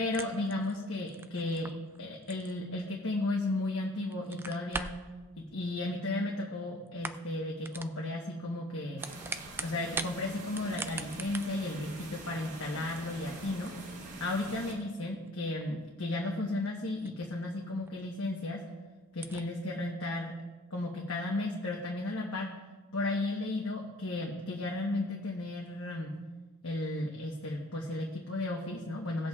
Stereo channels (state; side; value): normal; both; correlation 0.53